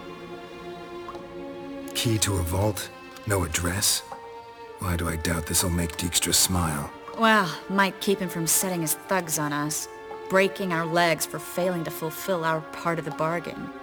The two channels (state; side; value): identical; both; correlation 1.00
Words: Key to a vault? No address? Why do I doubt this'll make Dijkstra smile? Well, might keep him from setting his thugs on us. Breaking our legs for failing to fulfill our part of the bargain.